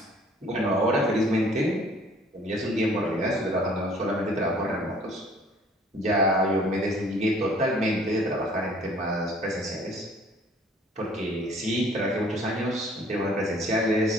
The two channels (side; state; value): both; normal; correlation 0.55